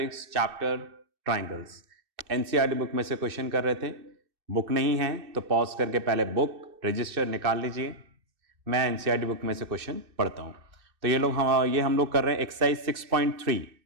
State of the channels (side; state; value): left; late; 2.6 ms